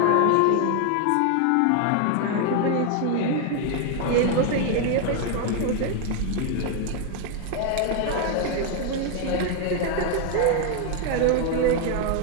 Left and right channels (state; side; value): different; both; correlation 0.00